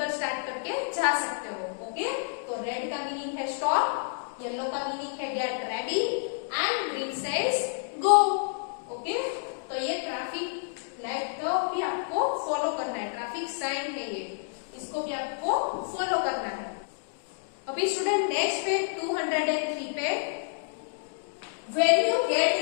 स्टार्ट करके जा सकते हो। ओके, तो रेड का मीनिंग है स्टॉप, येलो का मीनिंग है get ready and green says go. Okay, तो ये ट्रैफिक लाइट को भी आपको फॉलो करना है, ट्रैफिक साइन है ये, इसको भी आपको फॉलो करना है। अभी स्टूडेंट नेक्स्ट पे 203 पे, When you get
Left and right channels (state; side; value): silent; right; digital silence